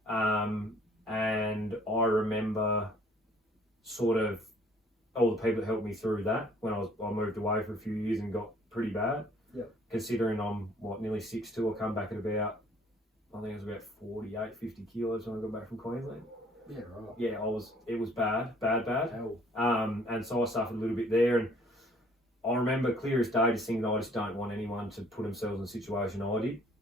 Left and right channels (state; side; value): normal; both; correlation 0.58